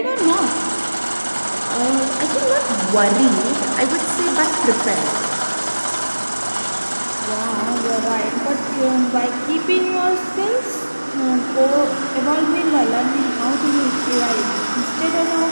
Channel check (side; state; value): both; inverted; correlation -1.00